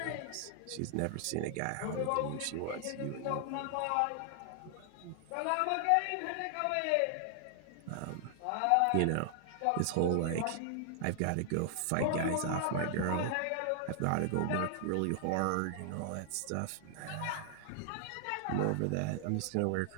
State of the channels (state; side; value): different; both; correlation 0.00